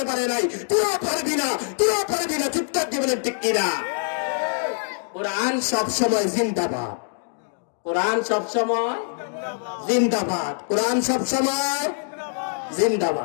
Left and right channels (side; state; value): right; silent; 63 dB below the other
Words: পারে নাই। তুইও পারবি না, তুইও পারবি না। চিৎকার দিবেন ঠিক কিনা? কোরআন সব সময় জিন্দাবাদ, কোরআন সব সময় জিন্দাবাদ, কোরআন সব সময়